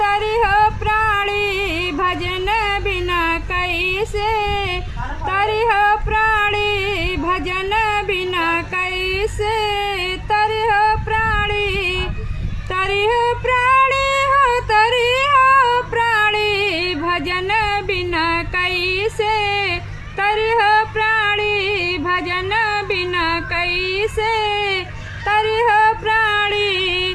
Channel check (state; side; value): identical; both; correlation 1.00